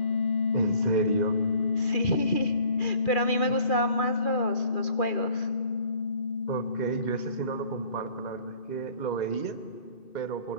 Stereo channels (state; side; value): late; right; 2.4 ms